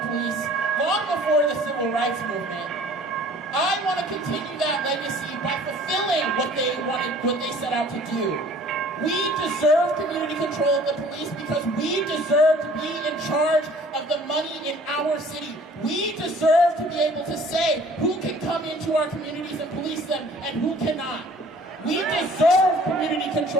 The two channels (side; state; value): both; normal; correlation 0.52